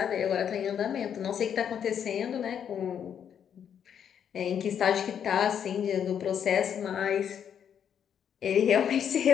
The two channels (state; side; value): quieter; right; 8.5 dB